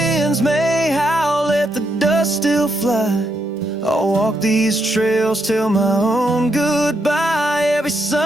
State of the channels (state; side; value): normal; both; correlation 0.79